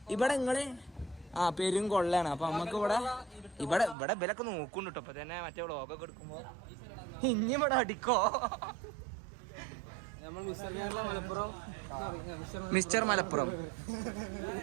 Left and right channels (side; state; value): left; drops out; at 4.0 s